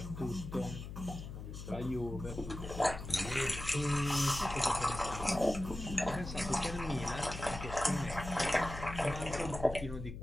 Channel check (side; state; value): left; noise; hum, 9 dB below the sound